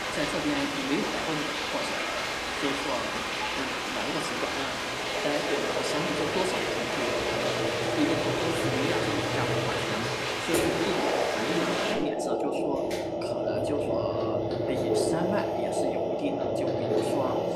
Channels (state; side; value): identical; both; correlation 1.00